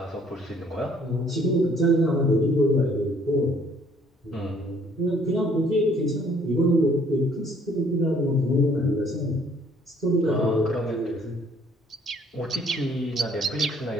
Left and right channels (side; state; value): both; normal; correlation 0.61